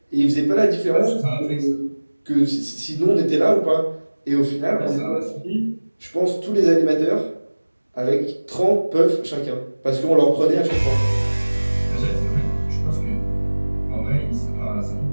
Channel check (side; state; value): both; inverted; correlation -1.00